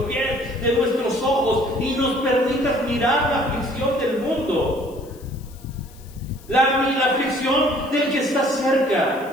pies, de nuestros ojos y nos permitas mirar la aflicción del mundo. La aflicción del que está cerca.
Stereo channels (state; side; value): noise; left; hiss, 25 dB below the sound